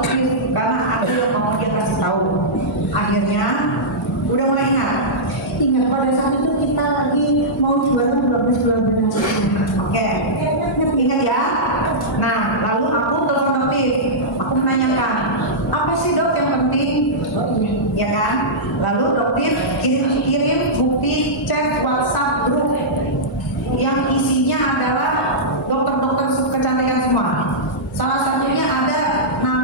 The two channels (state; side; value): normal; both; correlation -0.13